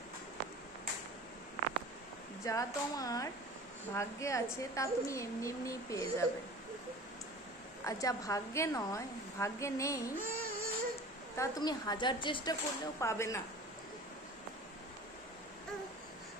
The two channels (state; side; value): normal; both; correlation 0.40